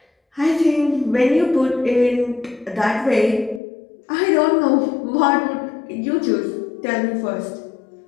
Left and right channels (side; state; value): right; drops out; at 3.6 s